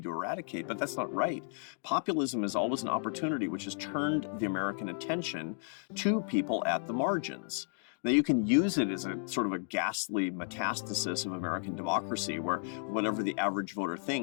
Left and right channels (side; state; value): right; silent; 56 dB below the other